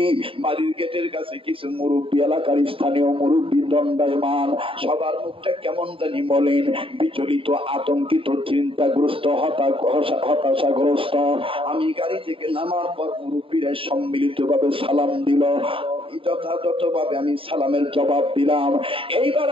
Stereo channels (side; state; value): left; late; 0.26 ms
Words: বাড়ির গেটের কাছে কিছু মুরব্বী, এলাকার স্থানীয় মুরব্বী দণ্ডায়মান, সবার মুখটা কেমন জানি মলিন, বিচলিত, আতঙ্কিত, চিন্তাগ্রস্ত, হতাশাগ্রস্ত। আমি গাড়ি থেকে নামার পর মুরব্বীরা সম্মিলিত ভাবে সালাম দিল, যথাযথ ভাবে আমি সালামের জবাব দিলাম। এইবার